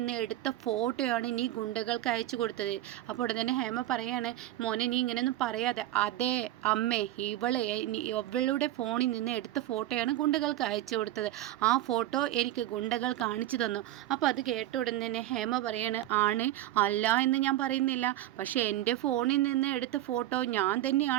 എടുത്ത ഫോട്ടോയാണ് നീ ഗുണ്ടകൾക്ക് അയച്ചു കൊടുത്തത്. അപ്പോൾ ഉടൻ തന്നെ ഹേമ പറയാണ്, മോനെ നീ ഇങ്ങനെയൊന്നും പറയാതെ. അതേ അമ്മേ, ഇവളുടെ ഫോണിൽ നിന്ന് എടുത്ത ഫോട്ടോയാണ് ഗുണ്ടകൾക്ക് അയച്ചു കൊടുത്തത്. ആ ഫോട്ടോ എനിക്ക് ഗുണ്ടകൾ കാണിച്ചു തന്നു. അപ്പോൾ അത് കേട്ട ഉടൻ തന്നെ ഹേമ പറയാണ്, ആണ് അല്ല എന്ന് ഞാൻ പറയുന്നില്ല, പക്ഷേ എൻ്റെ ഫോണിൽ നിന്ന് എടുത്ത ഫോട്ടോ ഞാൻ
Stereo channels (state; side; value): quieter; left; 14.2 dB